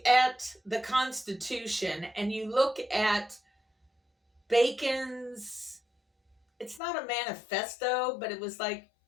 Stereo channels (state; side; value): drops out; right; at 6.8 s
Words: at the Constitution and you look at Bacon's, it's not a manifesto, but it was like